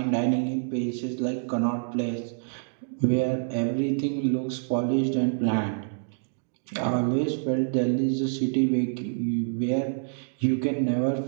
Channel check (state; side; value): silent; left; digital silence